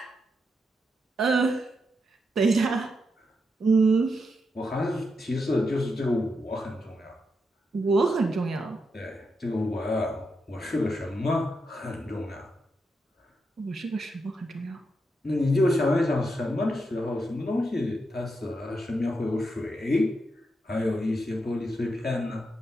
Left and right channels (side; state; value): both; normal; correlation 0.84